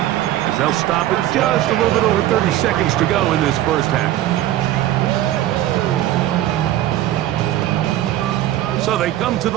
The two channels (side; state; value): left; quieter; 13.7 dB